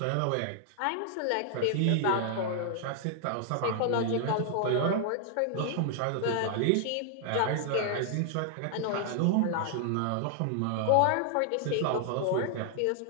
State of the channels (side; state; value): both; different; correlation 0.00